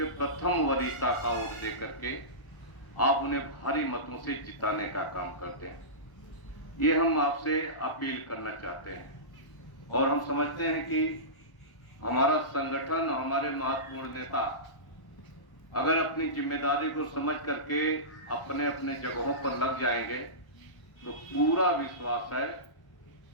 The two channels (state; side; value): late; right; 1.1 ms